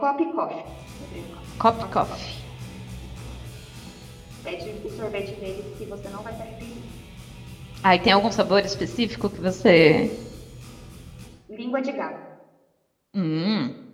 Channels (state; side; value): identical; both; correlation 1.00